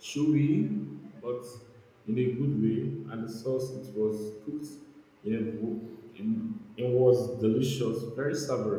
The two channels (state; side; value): identical; both; correlation 1.00